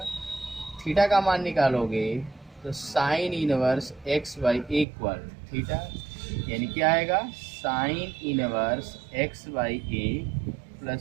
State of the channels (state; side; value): drops out; left; at 4.9 s